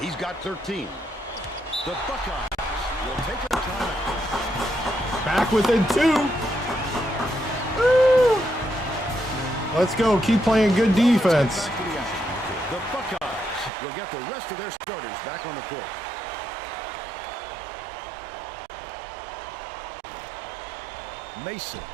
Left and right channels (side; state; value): left; drops out; at 13.7 s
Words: He's got 13. The Buckeyes will take a timeout. Back within 2. Woo! Let's go. Keep playing good defense. Back to the action. The Buckeyes will get the rest of their starters back on the court. Mason